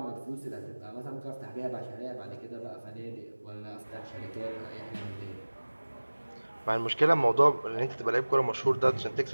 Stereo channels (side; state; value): both; inverted; correlation -1.00